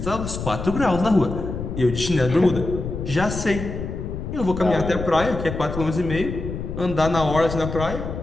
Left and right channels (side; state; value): left; noise; rumble, 6 dB below the sound